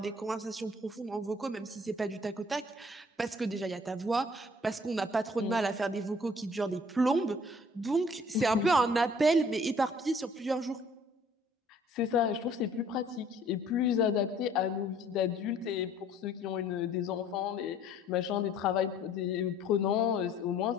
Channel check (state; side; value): normal; both; correlation 0.56